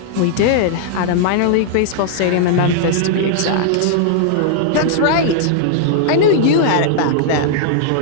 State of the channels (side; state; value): both; different; correlation -0.01